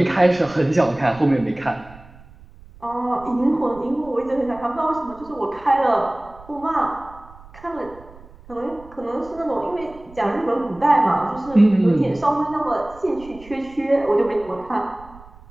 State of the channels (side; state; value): right; noise; rumble, 21 dB below the sound